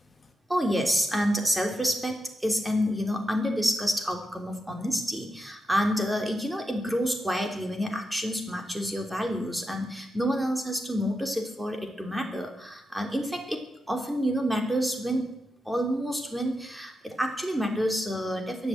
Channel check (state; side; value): normal; both; correlation 0.87